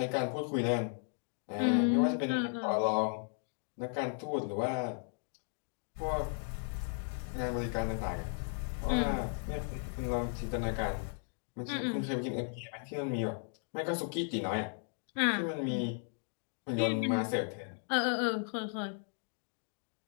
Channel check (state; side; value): silent; right; 54 dB below the other